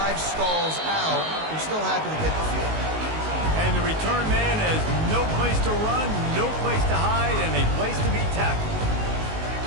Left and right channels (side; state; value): left; late; 19 ms